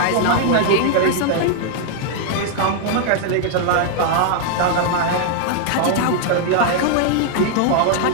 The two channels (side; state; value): both; different; correlation -0.01